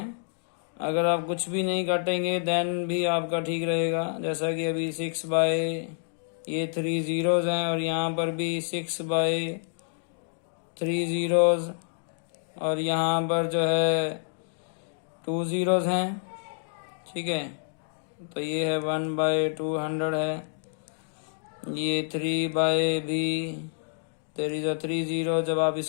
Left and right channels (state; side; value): silent; right; digital silence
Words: अगर आप कुछ भी नहीं काटेंगे देन भी आपका ठीक रहेगा। जैसा कि अभी 6 बाय ये 3 जीरोज हैं और यहाँ पर भी 6 बाय 3 जीरोज और यहाँ पर जो है 2 जीरोज हैं। ठीक है, तो ये है 1 बाय 200 है, ये 3 बाय भी देयर इज 3 जीरो। जब आप